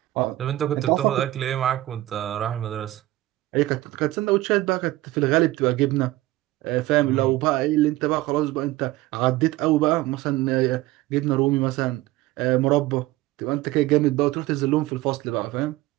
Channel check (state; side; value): quieter; left; 17.1 dB